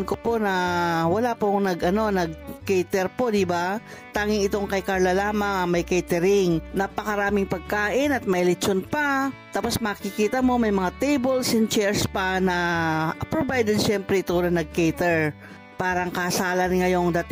ko po na wala pong nag-cater po, diba? Tanging itong kay Carla lamang may catering. Napakaraming pagkain at may lechon pa. Tapos makikita mo may mga tables and chairs pa na provided syempre ito na nag-cater. Parang kasalan ngayong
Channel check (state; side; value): identical; both; correlation 1.00